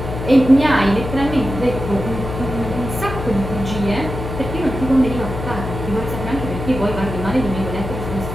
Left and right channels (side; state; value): left; noise; hum, 7 dB below the sound